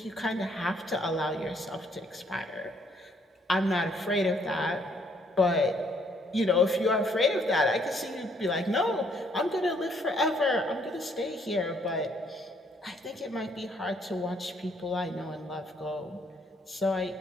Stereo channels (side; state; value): both; normal; correlation 0.67